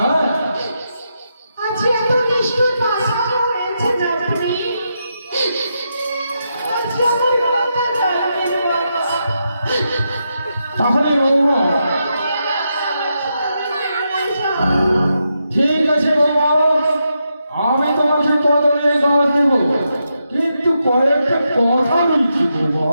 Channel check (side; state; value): both; inverted; correlation -0.84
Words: আজ এত নিষ্ঠুর ভাষা হয়েছে আপনি। আজ আমার কথা জানবেন বাবা। তাহলে বৌমা ঠিক আছে বৌমা, আমি তোমাকে কদমের গাছ দেব, কিন্তু কয়েকটা কথা বলছি বৌমা।